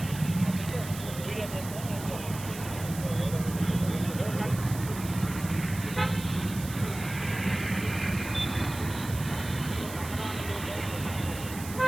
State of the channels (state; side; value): noise; right; hiss, 12 dB below the sound